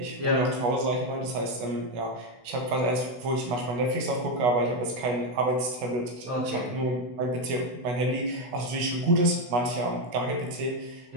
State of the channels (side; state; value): left; late; 16 ms